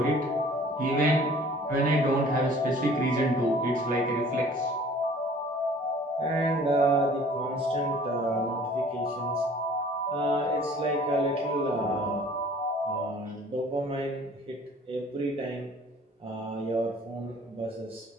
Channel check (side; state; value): both; normal; correlation 0.51